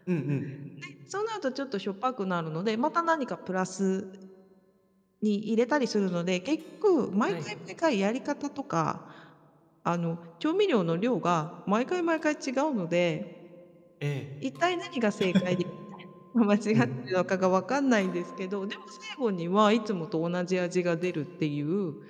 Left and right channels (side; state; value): both; identical; correlation 1.00